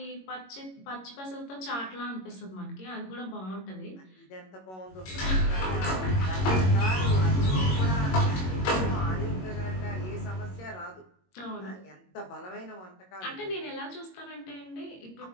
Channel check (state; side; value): late; right; 22 ms